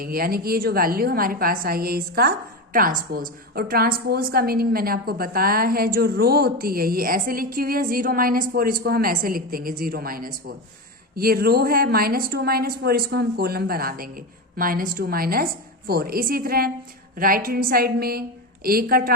यानी कि ये जो वैल्यू हमारे पास आई है इसका ट्रांसपोज। और ट्रांसपोज का मीनिंग मैंने आपको बताया है, जो रो होती है ये ऐसे लिखी हुई है 0 - 4, इसको हम ऐसे लिख देंगे 0 - 4। ये रो है -2 - 4, इसको हम कॉलम बना देंगे -2 - 4। इसी तरह राइट हैंड साइड में ए का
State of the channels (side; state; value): both; normal; correlation 0.18